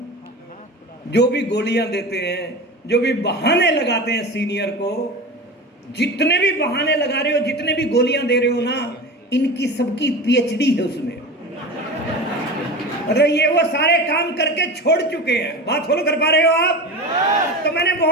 जो भी गोलियां देते हैं, जो भी बहाने लगाते हैं सीनियर को, जितने भी बहाने लगा रहे हो, जितने भी गोलियां दे रहे हो ना, इनकी सबकी पीएचडी है उसमें। मतलब ये वो सारे काम करके छोड़ चुके हैं। बात फॉलो कर पा रहे हो आप? तो मैंने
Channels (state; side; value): normal; both; correlation 0.29